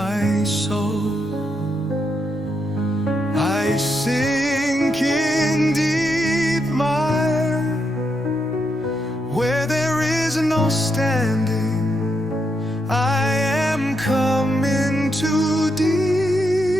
soul. I sink in deep mire, where there is no standing. I am come into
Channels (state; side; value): normal; both; correlation 0.81